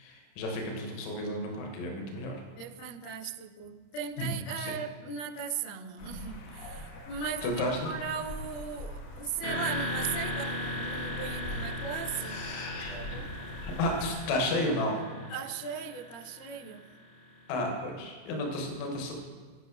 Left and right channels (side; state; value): right; late; 31 ms